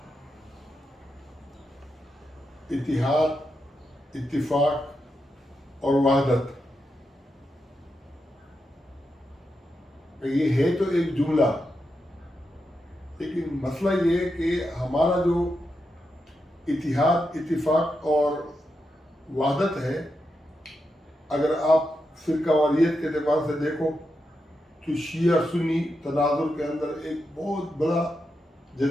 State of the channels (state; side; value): normal; both; correlation 0.86